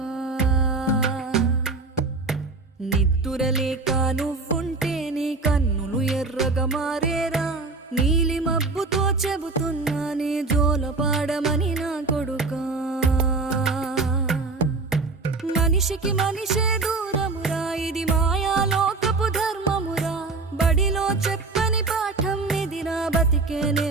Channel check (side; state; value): left; quieter; 3.7 dB